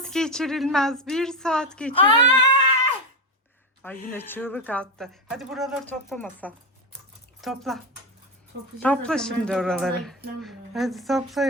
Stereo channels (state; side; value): normal; both; correlation 0.12